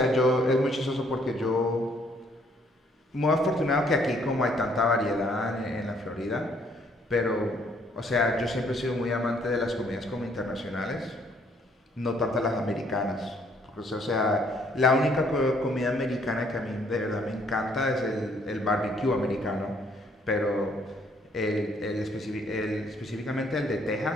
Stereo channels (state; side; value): normal; both; correlation 0.66